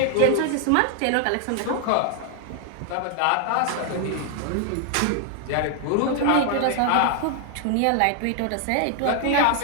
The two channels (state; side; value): different; both; correlation 0.00